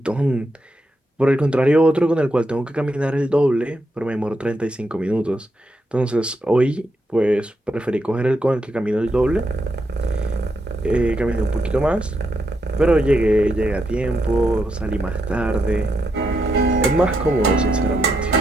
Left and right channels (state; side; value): normal; both; correlation 0.81